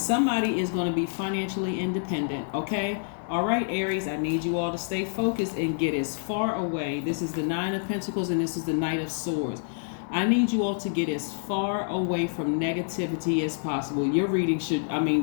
is going to be financially independent, okay? All right, Aries, I need you all to stay focused and get as far away. This is the Nine of Pentacles and this is the Knight of Swords. I need you all to get as far away from negativity as possible. Your reading should,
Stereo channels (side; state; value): right; silent; 60 dB below the other